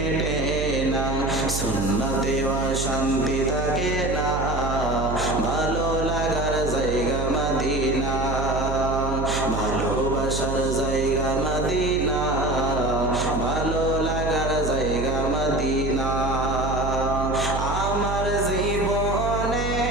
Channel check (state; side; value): noise; right; hum, 3 dB below the sound